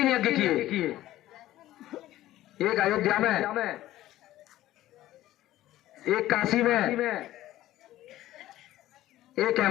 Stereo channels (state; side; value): quieter; right; 14.7 dB